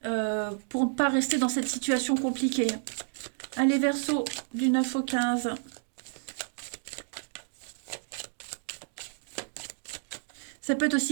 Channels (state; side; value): silent; left; digital silence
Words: pour ne pas rester dans cette situation compliquée. Allez, Verseau, du 9 au 15. Ça peut être